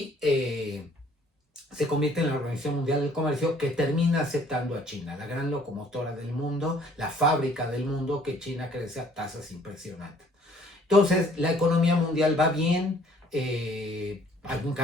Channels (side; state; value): both; normal; correlation 0.58